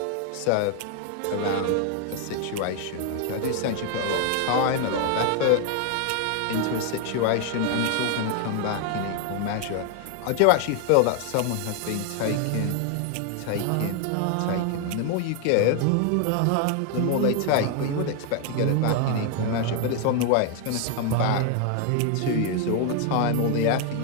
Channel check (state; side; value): different; both; correlation 0.00